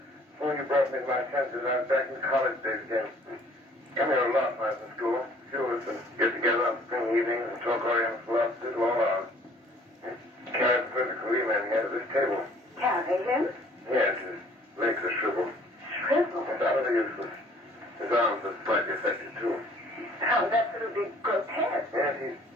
Before you brought me to my senses, I was back in college days again. Come here a lot when I was in school. A few of us would get together on spring evenings and talk Oriental philosophy all hours. Carried Professor Kaliman here to this table. Carry him? Yes, his legs are shriveled. Shriveled? Utterly useless. His arms are slightly affected, too. Sounds absolutely grotesque. Yes, he's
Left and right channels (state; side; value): normal; both; correlation 0.56